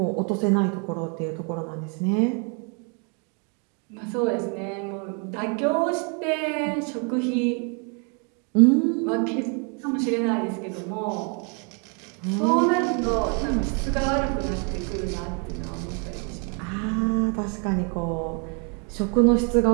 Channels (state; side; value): quieter; left; 37.1 dB